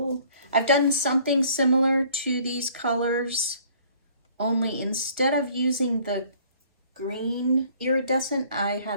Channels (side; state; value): both; inverted; correlation -0.56